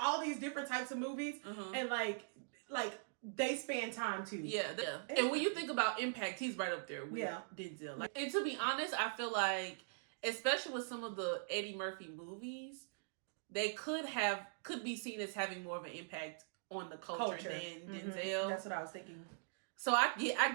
these different types of movies. And like they span time too. Yeah. And when you think about impact, he's right up there with Denzel. Like, and to be honest, I feel like, especially with some of the Eddie Murphy movies, they could be seen as having more of an impact on the culture than Denzel. That's what I was thinking. So I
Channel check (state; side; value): silent; left; digital silence